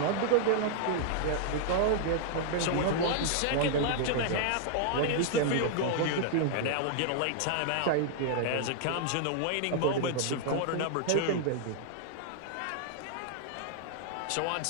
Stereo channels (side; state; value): both; different; correlation -0.01